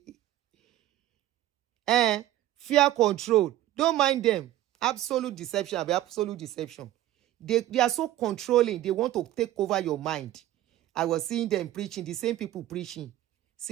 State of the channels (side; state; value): left; quieter; 14.0 dB